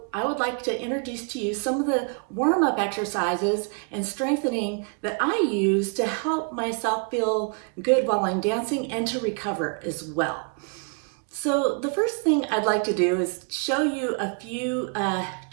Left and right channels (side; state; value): left; quieter; 39.2 dB